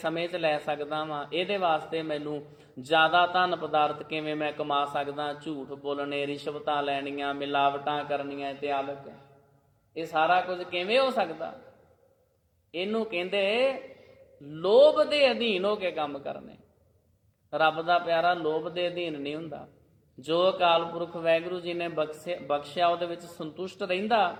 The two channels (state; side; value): identical; both; correlation 1.00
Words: 'ਚ ਲੈ ਸਕਦਾ ਵਾਂ, ਇਹਦੇ ਵਾਸਤੇ ਮੈਨੂੰ ਜ਼ਿਆਦਾ ਧਨ ਪਦਾਰਥ ਕਿਵੇਂ ਮੈਂ ਕਮਾ ਸਕਦਾ, ਝੂਠ ਬੋਲਣੇ, ਰਿਸ਼ਵਤਾਂ ਲੈਣੀਆਂ, ਮਿਲਾਵਟਾਂ ਕਰਨੀਆਂ ਇਤਿਆਦਿਕ। ਇਹ ਸਾਰਾ ਕੁਝ ਕਿਵੇਂ ਹੋ ਸਕਦਾ? ਇਹਨੂੰ ਕਹਿੰਦੇ ਲੋਭ ਦੇ ਅਧੀਨ ਹੋ ਕੇ ਕੰਮ ਕਰਨੇ। ਰੱਬ ਦਾ ਪਿਆਰਾ ਲੋਭ ਦੇ ਅਧੀਨ ਨਹੀਂ ਹੁੰਦਾ। ਜੋ ਅਕਾਲ ਪੁਰਖ ਵਾਹਿਗੁਰੂ ਜੀ ਨੇ ਬਖਸ਼ਿਆ ਉਹਦੇ ਵਿੱਚ ਸੰਤੁਸ਼ਟ ਰਹਿੰਦਾ।